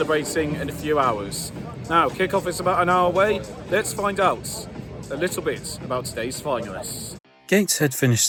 in a few hours. Now, kick-off is about an hour away. Let's find out a little bit about today's finalists. Gateshead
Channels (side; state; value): both; identical; correlation 1.00